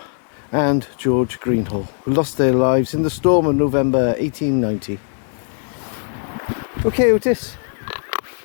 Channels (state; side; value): silent; right; 61 dB below the other